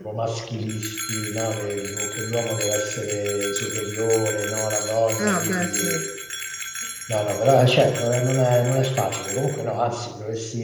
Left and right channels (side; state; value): both; identical; correlation 1.00